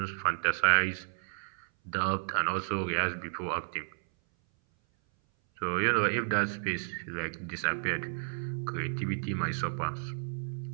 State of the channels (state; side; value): silent; left; 56 dB below the other